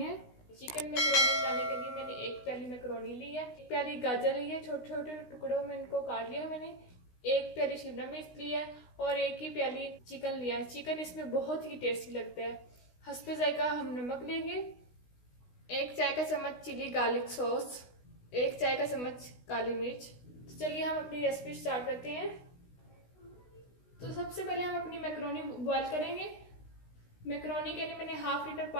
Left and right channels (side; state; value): right; late; 16 ms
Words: चिकन मैकरोनी बनाने के लिए मैंने एक प्याली मैकरोनी ली है, एक प्याली गाजर ली है, छोटे छोटे टुकड़ों में इनको काट लिया मैंने, एक प्याली शिमला मिर्च ली है और एक ही प्याली चिकन लिया है। चिकन इसमें बहुत ही टेस्टी लगता है। हस्बे जायका हम नमक लेंगे, एक चाय का चम्मच चिली गार्लिक सॉस, एक चाय का चम्मच काली मिर्च। तो चलिए हम अपनी रेसिपी स्टार्ट करते हैं। तो सबसे पहले हम अपनी मैकरोनी बॉईल करेंगे। मैकरोनी के लिए मैंने हाफ लीटर